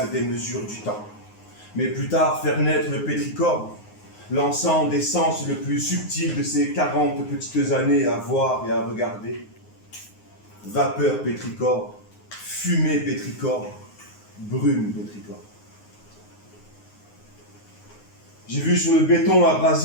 des mesures du temps, mais plus tard faire naître le pétrichor, lançant des sens le plus subtil de ces 40 petites années à voir et à regarder. Vapeur pétrichor, fumée pétrichor, brume pétrichor. J'ai vu sur le béton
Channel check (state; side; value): late; right; 9.6 ms